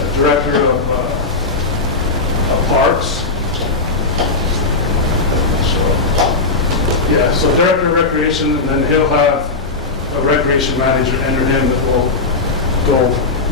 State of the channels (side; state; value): right; quieter; 3.7 dB